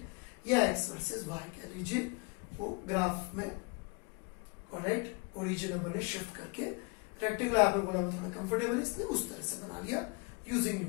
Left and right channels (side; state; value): right; quieter; 31.0 dB